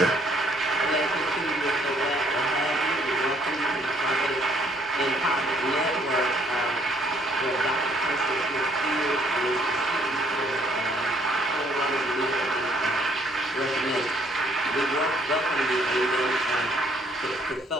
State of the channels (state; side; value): normal; both; correlation 0.65